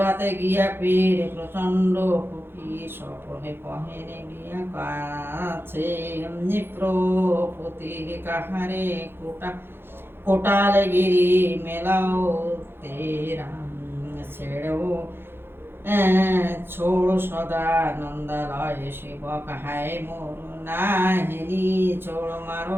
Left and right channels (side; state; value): left; late; 0.11 ms